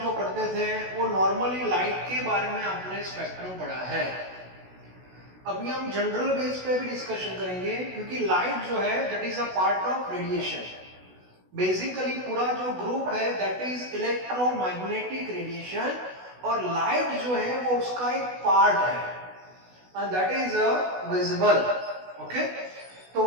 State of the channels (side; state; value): left; late; 16 ms